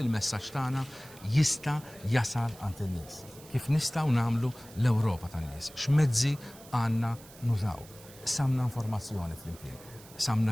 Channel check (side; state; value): right; noise; hiss, 20 dB below the sound